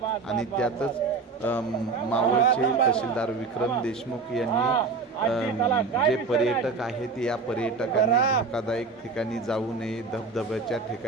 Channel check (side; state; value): left; quieter; 4.4 dB